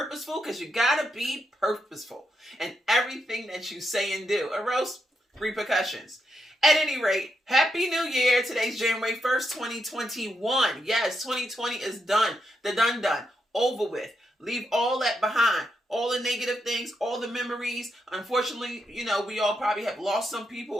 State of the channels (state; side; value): normal; both; correlation 0.82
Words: because you gotta be purposeful in everything that you say and do, or else repercussions. At any rate, Happy New Year. Today's January 1st, 2021. Yes, 2020 is done. The done. Over with. Leave all that behind. All the negative things, all the memories. Unfortunately, we all probably have lost some people